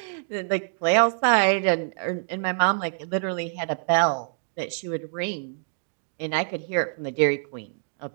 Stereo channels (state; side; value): silent; left; digital silence